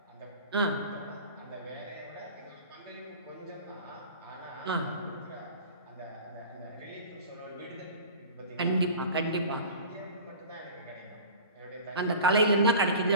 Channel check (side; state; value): both; inverted; correlation -0.39